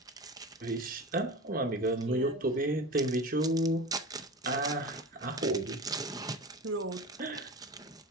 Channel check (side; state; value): both; normal; correlation 0.31